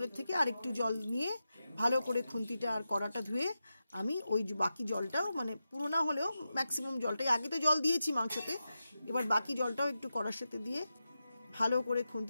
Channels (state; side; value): inverted; both; correlation -0.90